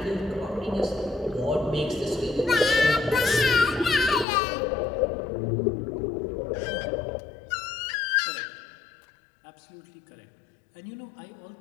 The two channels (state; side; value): drops out; right; at 4.2 s